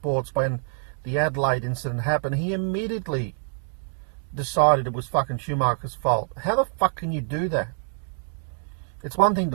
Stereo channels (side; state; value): left; silent; 61 dB below the other